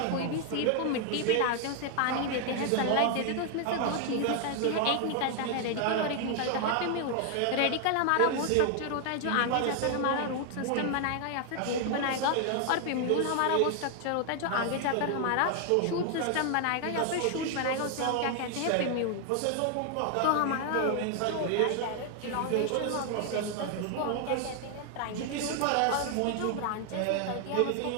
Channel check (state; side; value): different; both; correlation 0.00